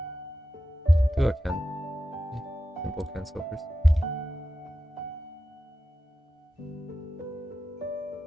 Do a simple cancel first.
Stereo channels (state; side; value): normal; both; correlation 0.91